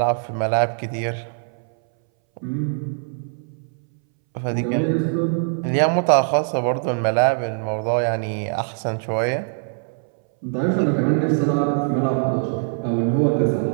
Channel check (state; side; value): silent; left; 62 dB below the other